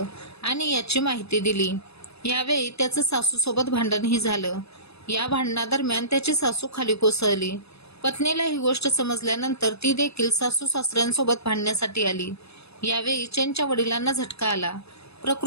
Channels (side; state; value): right; late; 0.79 ms